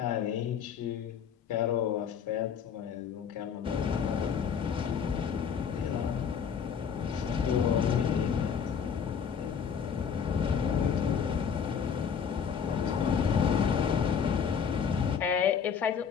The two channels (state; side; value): quieter; right; 7.1 dB